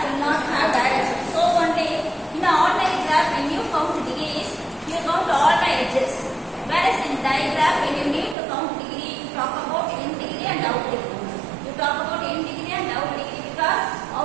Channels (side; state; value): left; drops out; at 8.3 s